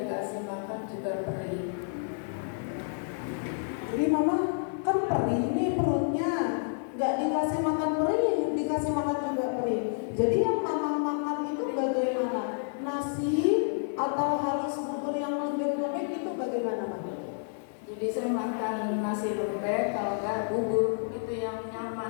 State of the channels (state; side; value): silent; right; 58 dB below the other